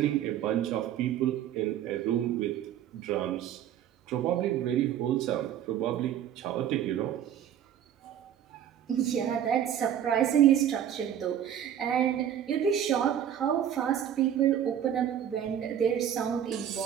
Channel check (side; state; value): left; quieter; 10.0 dB